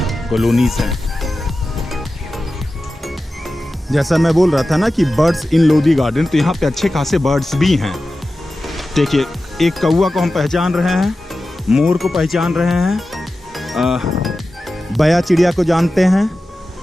कॉलोनीज हैं। जैसा मैं बोल रहा था ना कि बर्ड्स इन लोधी गार्डन, तो यहाँ पे अच्छे खासे बर्ड्स भी हैं। देखिए, एक कौवा को हम पहचान रहे हैं, मोर को पहचान रहे हैं, बया चिड़िया को जानते हैं,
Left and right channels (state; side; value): normal; both; correlation 0.94